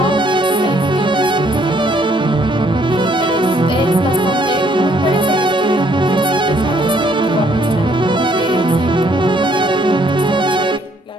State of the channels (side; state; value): both; normal; correlation 0.66